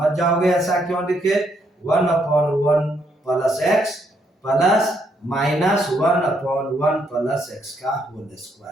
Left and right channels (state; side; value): normal; both; correlation 0.74